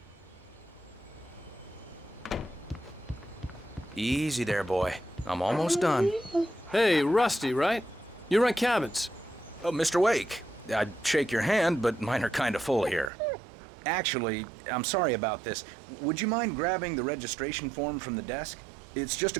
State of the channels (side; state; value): left; drops out; at 13.1 s